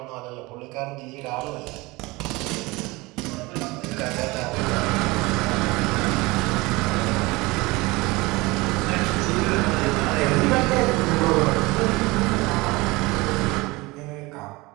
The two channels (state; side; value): quieter; left; 22.9 dB